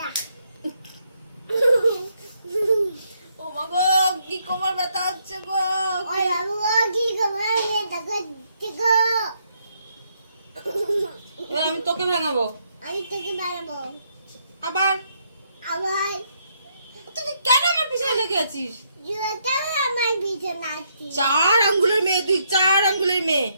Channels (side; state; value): both; inverted; correlation -0.75